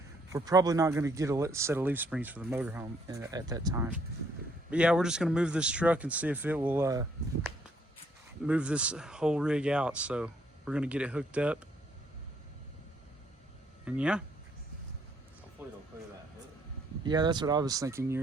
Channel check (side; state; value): both; normal; correlation 0.68